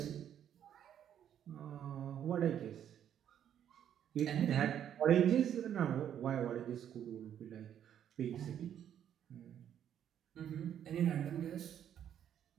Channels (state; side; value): quieter; left; 9.8 dB